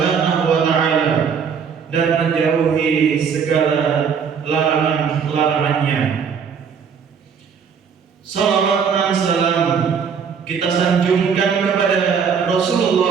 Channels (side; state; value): left; quieter; 6.6 dB